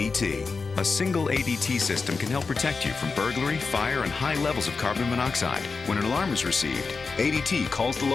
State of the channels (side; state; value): right; quieter; 4.5 dB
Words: A single ADT system can help protect you from burglary, fire, and high levels of carbon monoxide. When an alarm is received, ADT calls the